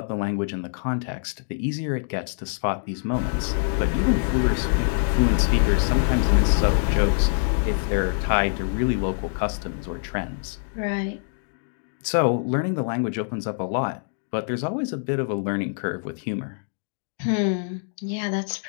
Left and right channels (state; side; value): silent; right; digital silence